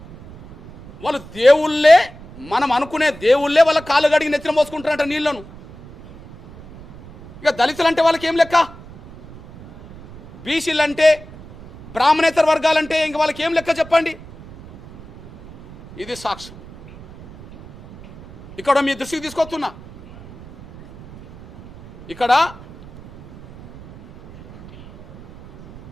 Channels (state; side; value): noise; right; rumble, 19 dB below the sound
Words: వాళ్ళు దేవుళ్ళే, మనం అనుకునే దేవుళ్ళే వాళ్ళ కాళ్ళు గడిగి నెత్తిన పోసుకుంటారంట నీళ్లను. ఇక దళితులు అంటే వాళ్ళకి ఏం లెక్క, బీసీలు అంటే, బ్రాహ్మణేతర వర్గాలంటే ఇంక వాళ్ళకి ఏం లెక్క చెప్పండి. ఇది సాక్ష్యం. ఇక్కడ మీ దృష్టికి తీసుకొస్తున్నా, ఇక్కడ